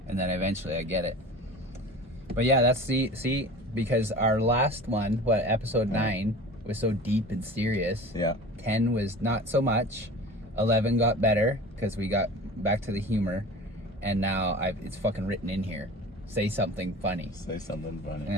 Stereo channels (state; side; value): normal; both; correlation 0.38